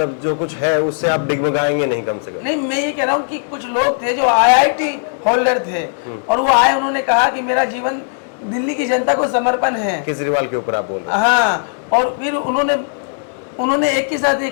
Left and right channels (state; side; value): silent; right; digital silence